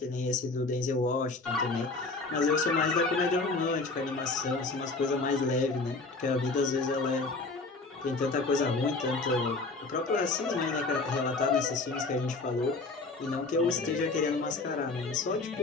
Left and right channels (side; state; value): right; quieter; 3.6 dB